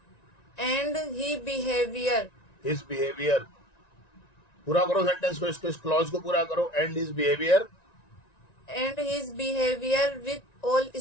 and His behavior. पूरा करो सेंटेंस को, इसको, इस क्लॉज को पूरा करो. And his behavior. with all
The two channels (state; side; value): late; right; 1.9 ms